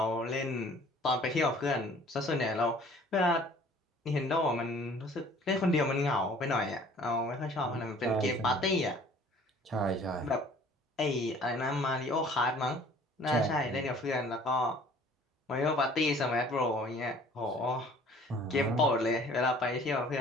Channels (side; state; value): both; normal; correlation 0.53